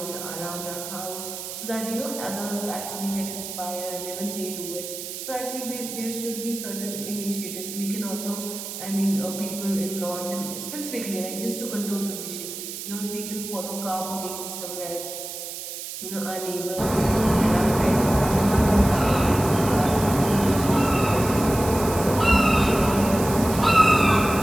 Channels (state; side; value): noise; right; hiss, 8 dB below the sound